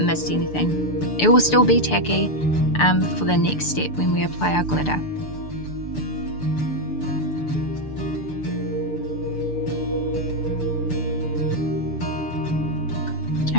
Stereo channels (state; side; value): late; right; 6.8 ms